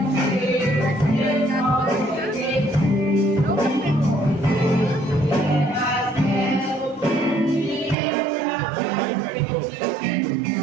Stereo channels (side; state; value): left; drops out; at 8.0 s